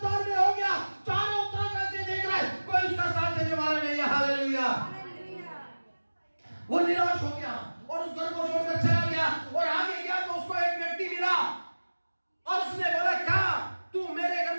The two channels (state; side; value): inverted; both; correlation -1.00